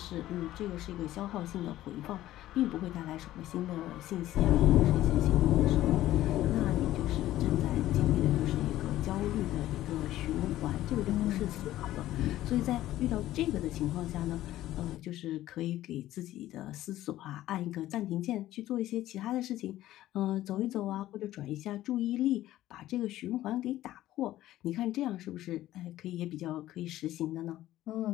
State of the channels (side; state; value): right; quieter; 14.5 dB